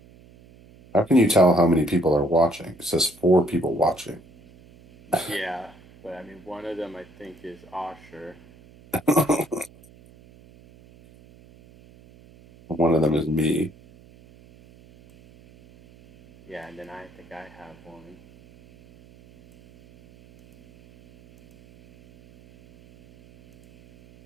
How can you tell how many people are watching? It says 4 people watching. Yeah, but I mean, one of them I think is Osher. One of them is me. Yeah, and then I think I have one.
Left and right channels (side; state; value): right; noise; hum, 25 dB below the sound